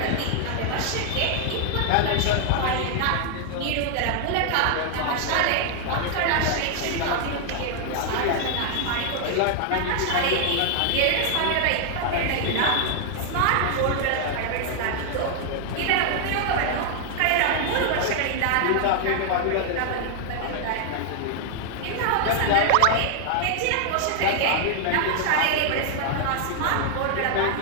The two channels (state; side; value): different; both; correlation 0.00